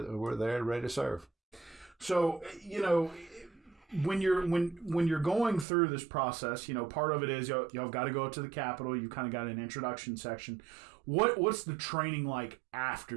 there ready to serve. So, when you're going through this process, part of it is y'all got to go up to the Capitol. You kind of got an introduction section. What's the training like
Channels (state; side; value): drops out; left; at 5.7 s